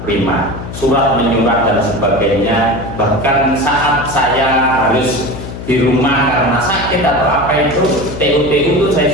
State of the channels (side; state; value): left; noise; hum, 10 dB below the sound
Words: surat menyurat dan sebagainya. Bahkan saat saya harus di rumah karena sakit atau apa itu, TU itu saya